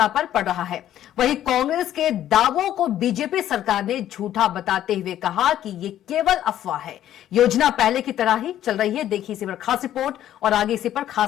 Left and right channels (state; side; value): quieter; right; 11.9 dB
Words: पर पड़ रहा है। वहीं कांग्रेस के दावों को बीजेपी सरकार ने झूठा बताते हुए कहा कि ये केवल अफवाह है, योजना पहले की तरह ही चल रही है। देखिए इसी पर खास रिपोर्ट और आगे इसी पर